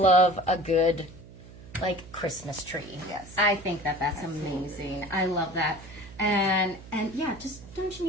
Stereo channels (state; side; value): noise; right; hum, 18 dB below the sound